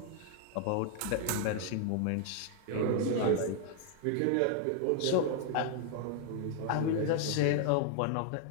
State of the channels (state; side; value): different; both; correlation 0.00